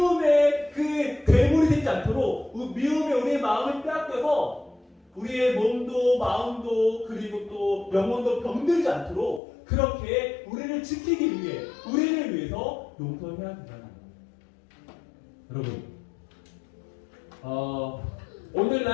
그 괴물이 되지 않도록 미움에 우리의 마음을 빼앗겨서 우리의 몸도 마음도 그리고 또 영혼도 병들지 않도록 그렇게 우리를 지키기 위해 우리를 위해서 용서해야 된다는 거예요. 여러분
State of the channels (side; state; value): right; drops out; at 9.4 s